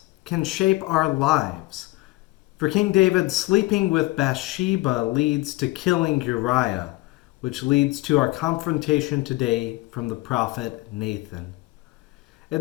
can shape our lives. For King David, sleeping with Bathsheba leads to killing Uriah, which leads to our confrontation today from the prophet Nathan.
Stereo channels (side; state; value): right; quieter; 20.6 dB